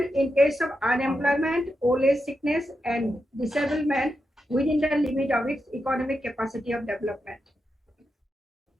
in case of unemployment, old age, sickness, and disablement within the limit of its economic capacity of development.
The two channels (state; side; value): normal; both; correlation 0.87